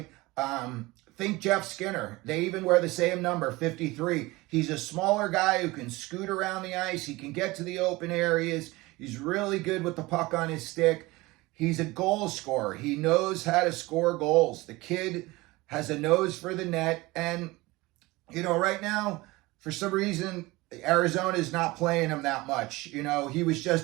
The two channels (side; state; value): left; quieter; 21.3 dB